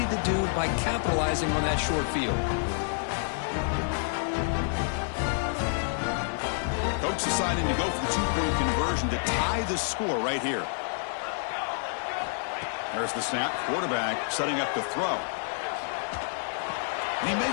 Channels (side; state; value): right; silent; 59 dB below the other